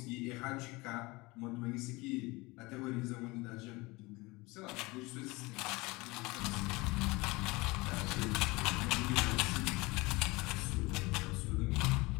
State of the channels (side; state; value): right; quieter; 23.2 dB